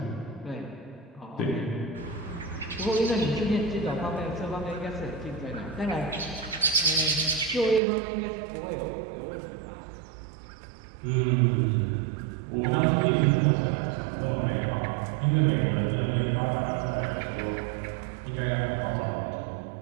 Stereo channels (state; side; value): drops out; left; at 7.8 s